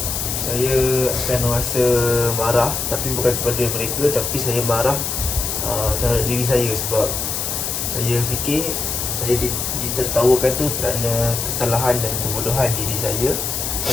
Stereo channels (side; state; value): left; noise; hiss, 2 dB below the sound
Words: Saya akan rasa marah, tapi bukan kepada mereka, tapi saya marah terhadap diri saya sebab saya fikir saya ditertawakan tu kerana kesalahan dan kebodohan diri saya.